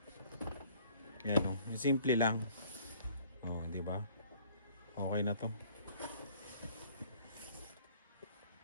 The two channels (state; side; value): inverted; both; correlation -0.57